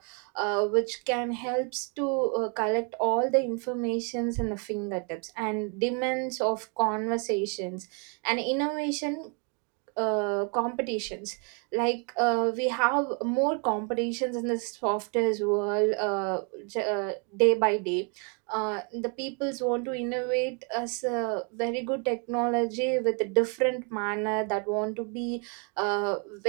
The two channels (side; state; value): left; quieter; 35.4 dB